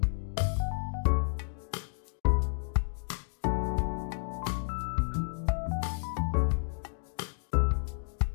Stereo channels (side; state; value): right; silent; digital silence